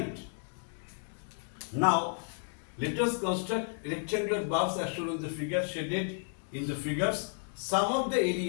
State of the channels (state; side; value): silent; right; 56 dB below the other